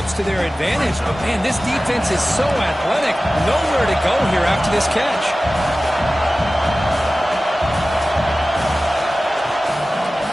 to their advantage, but, man, this defense is so athletic. Nowhere to go here after this catch.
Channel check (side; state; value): both; normal; correlation 0.96